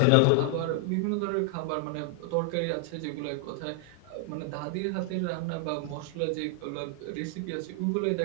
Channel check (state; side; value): different; both; correlation 0.00